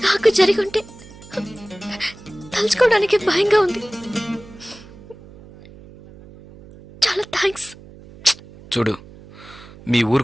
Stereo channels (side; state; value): right; noise; hum, 20 dB below the sound